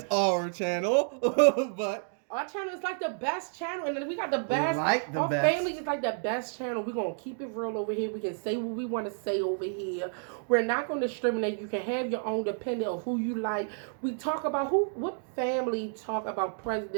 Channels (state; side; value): silent; left; 58 dB below the other